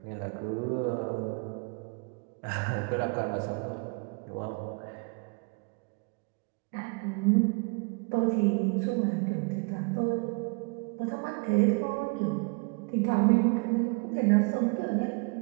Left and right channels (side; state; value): left; quieter; 34.2 dB